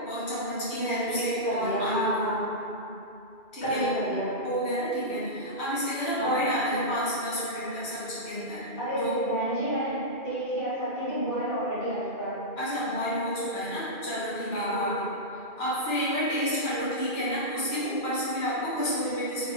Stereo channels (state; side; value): late; right; 2.4 ms